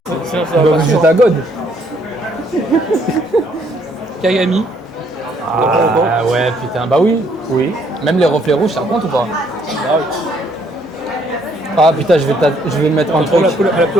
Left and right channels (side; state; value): both; normal; correlation 0.67